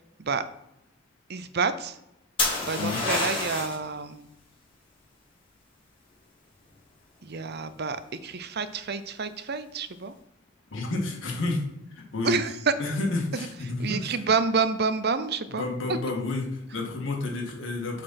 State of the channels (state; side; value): normal; both; correlation 0.12